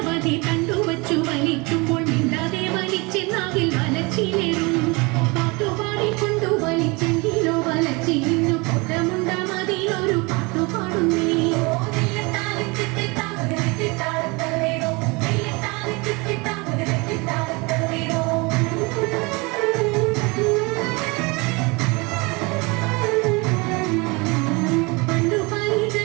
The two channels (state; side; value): quieter; left; 26.9 dB